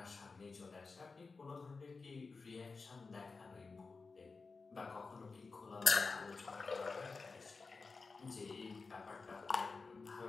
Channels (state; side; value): quieter; right; 4.3 dB